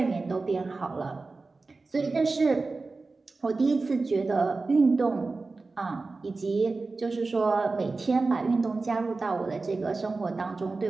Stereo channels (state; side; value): quieter; left; 3.7 dB